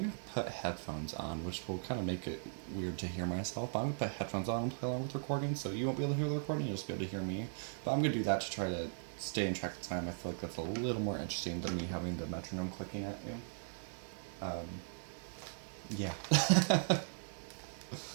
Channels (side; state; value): left; silent; 52 dB below the other